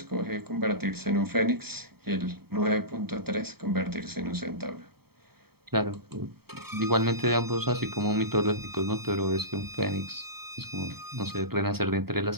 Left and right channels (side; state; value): left; late; 0.95 ms